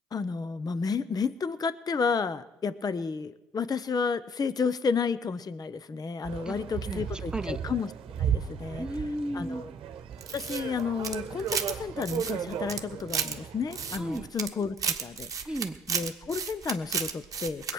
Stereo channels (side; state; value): both; normal; correlation 0.61